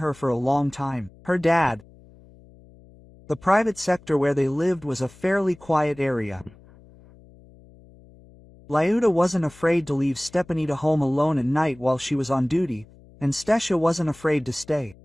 for a long time. Her dad. The private sector where they lived was a fairly quiet area. Lyuda wasn't afraid to leave Stepanida home alone at night while she was on duty, and Stasha wasn't afraid to stay.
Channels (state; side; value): noise; left; hum, 25 dB below the sound